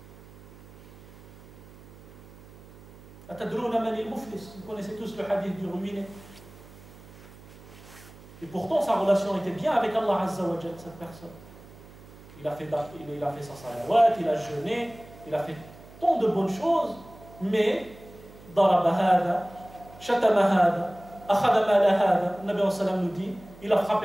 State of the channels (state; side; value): noise; right; hum, 21 dB below the sound